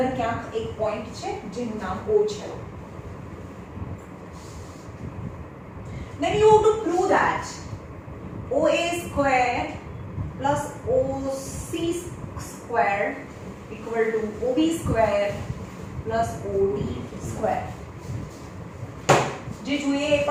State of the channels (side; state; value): both; identical; correlation 1.00